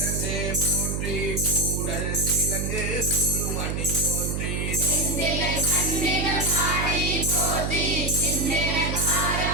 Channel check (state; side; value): noise; right; hum, 1 dB below the sound